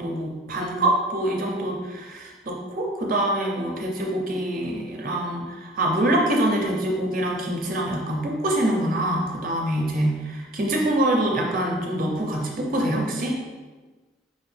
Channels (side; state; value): both; normal; correlation 0.49